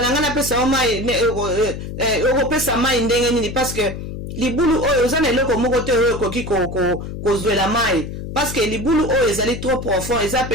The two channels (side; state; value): left; noise; hum, 8 dB below the sound